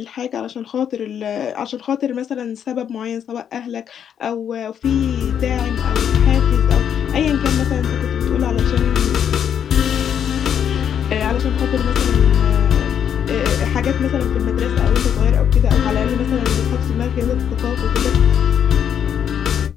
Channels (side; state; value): right; quieter; 8.7 dB